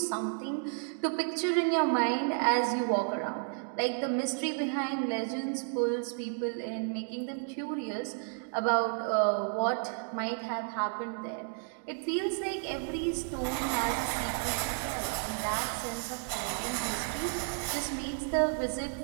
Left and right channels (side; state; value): left; silent; 56 dB below the other